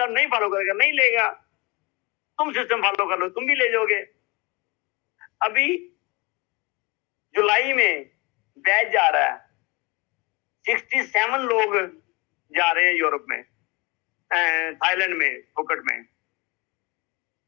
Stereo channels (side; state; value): right; quieter; 26.0 dB